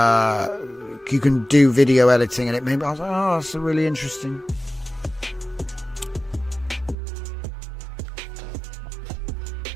you can do video editing, and it made me. I was like, oh, that's really interesting.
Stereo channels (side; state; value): left; drops out; at 7.0 s